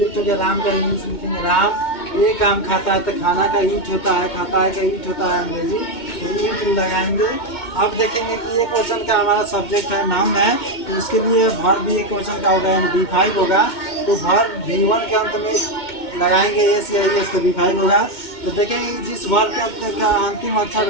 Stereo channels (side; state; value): right; late; 2.2 ms